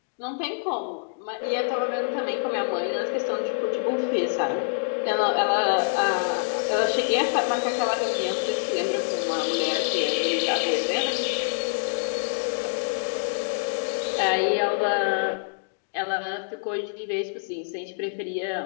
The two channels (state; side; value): silent; right; digital silence